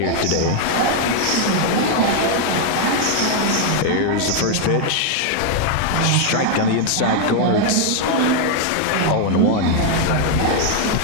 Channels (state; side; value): different; both; correlation 0.00